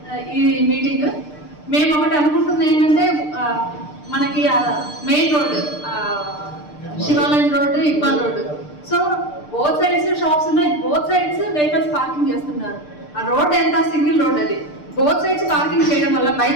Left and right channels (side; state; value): right; late; 6.7 ms